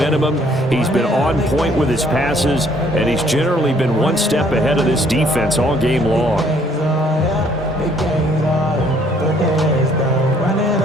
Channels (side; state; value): both; normal; correlation 0.63